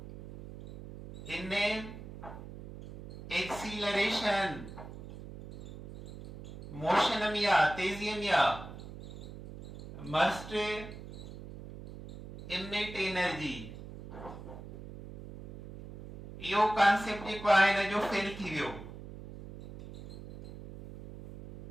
in acceleration motion में या तेजी में या must emit energy यो कॉन्सेप्ट जेको आहे न जो फेल थी वियो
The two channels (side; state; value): right; noise; hum, 13 dB below the sound